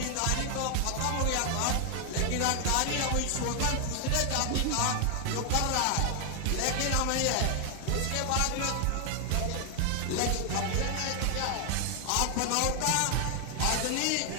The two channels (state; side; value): different; both; correlation 0.00